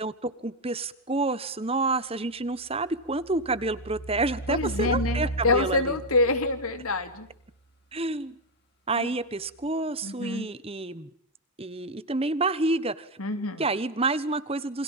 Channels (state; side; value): normal; both; correlation 0.04